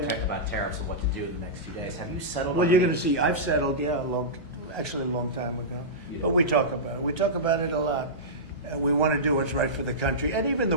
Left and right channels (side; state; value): both; normal; correlation -0.15